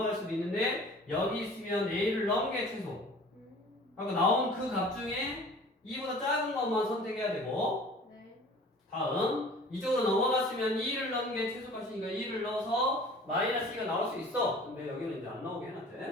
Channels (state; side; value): normal; both; correlation 0.46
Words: 수도 있는데 여기 있으면 A를 넣은 게 최소. 그러니까 나온 그 값 중에 2보다 작은 것만 선택해야 되고. 네. 다음 이쪽으로 넘어갔으면 2를 넣은 게 최소값이니까 2를 넣어서 마이너스 2가 나올 수 있어. 근데 여기는 이제 안 나오게